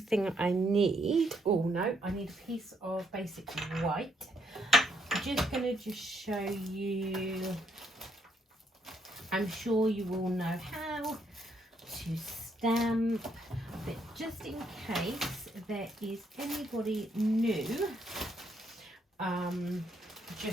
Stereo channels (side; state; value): both; normal; correlation 0.73